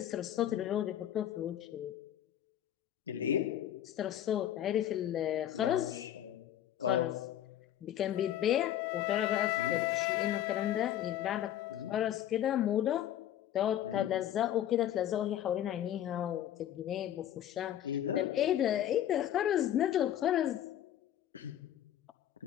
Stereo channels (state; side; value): quieter; right; 11.4 dB